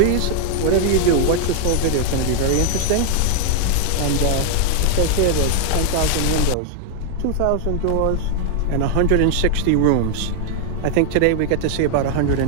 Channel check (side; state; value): both; different; correlation 0.00